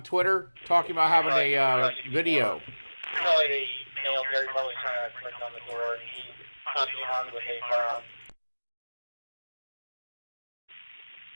Twitter talking about having a video? Apparently the male Gary Barlow trying to break down the door. He's possibly armed with a firearm.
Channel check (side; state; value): both; inverted; correlation -1.00